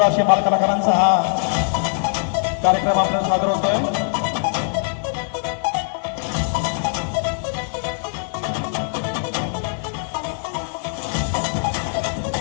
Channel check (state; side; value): silent; right; digital silence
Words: असे बालकलाकारांचा हा कार्यक्रम आपल्याला सादर होतोय